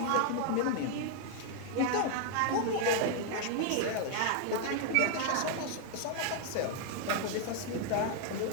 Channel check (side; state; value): both; different; correlation 0.00